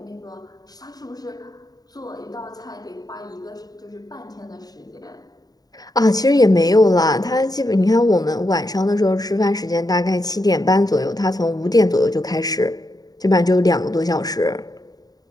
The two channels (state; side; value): late; right; 0.18 ms